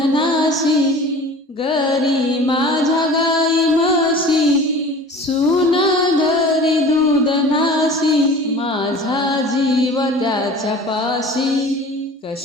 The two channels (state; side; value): normal; both; correlation 0.41